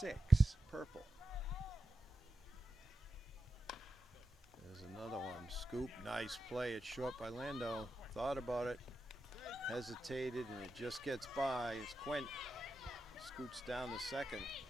Purple. There's another one. Scoop. Nice play. It's short by Lando. Thought about it. Hesitated, and it just gets by. It's Quint. Scoots down to second.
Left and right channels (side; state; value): both; normal; correlation 0.90